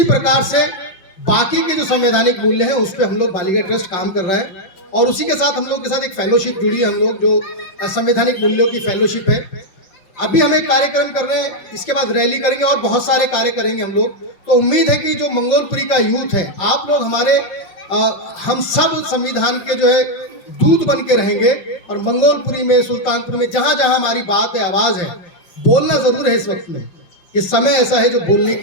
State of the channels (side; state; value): right; late; 5.7 ms